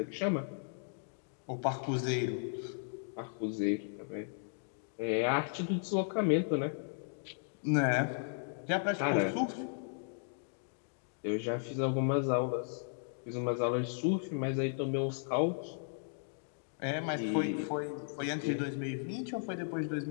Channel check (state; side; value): silent; right; digital silence